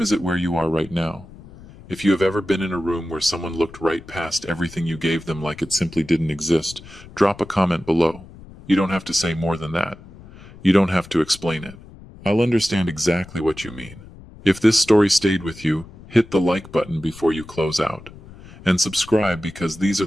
it where you are right now? If you have ever been in a room where someone looked right past everything you gave them like it simply didn't exist, drop a comment below. You don't have to say more than that. You don't have to explain it. I'll understand exactly what you mean. If this story stayed with you, hit the like button before you close out. And subscribe because these are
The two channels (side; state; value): left; noise; rumble, 19 dB below the sound